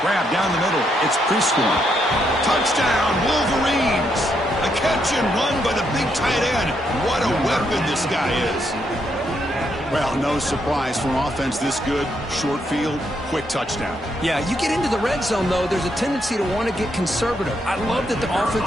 Grab down the middle. It's Prescorn. Touchdown, Wolverines! A catch and run by the big tight end. What a weapon this guy is. Well, no surprise for an offense this good. Short field, quick touchdown. Yeah, you get into the red zone, though, there's a tendency to want to get conservative. I love that the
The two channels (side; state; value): both; normal; correlation 0.77